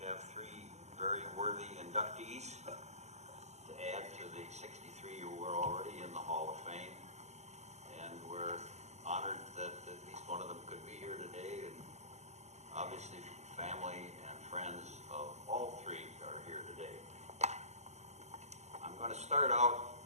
have three very worthy inductees to add to the 63 who were already in the Hall of Fame, and we're honored that at least one of them could be here today, and obviously family and friends of all three are here today. I'm going to start out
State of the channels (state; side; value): late; left; 0.33 ms